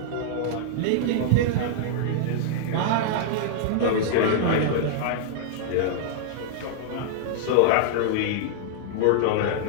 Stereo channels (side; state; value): both; different; correlation -0.01